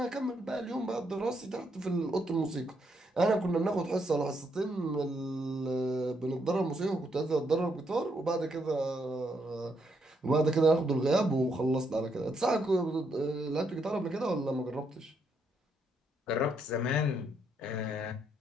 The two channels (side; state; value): both; normal; correlation 0.76